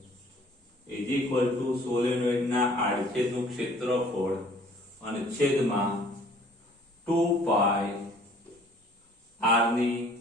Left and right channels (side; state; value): both; normal; correlation 0.55